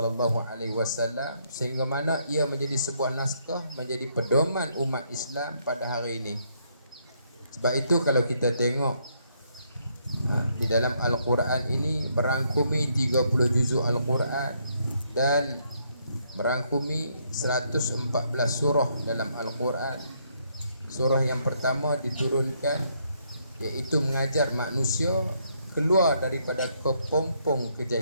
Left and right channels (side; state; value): both; inverted; correlation -0.72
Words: alaihi wasallam sehingga mana ia menjadi sebuah naskah, menjadi pedoman umat Islam pada hari ini. Sebab itu kalau kita tengok di dalam Al-Quran ini merangkumi 30 juzuk Al-Quran dan merangkumi 114 surah dalam Al-Quran. Surah yang pertama diturunkan iaitu mengajar manusia keluar daripada kepompong